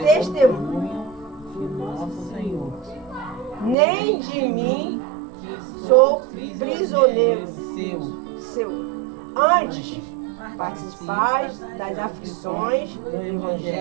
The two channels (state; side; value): drops out; left; at 3.8 s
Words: de nosso Senhor, nem de mim, que sou prisioneiro seu. Antes, participais das aflições do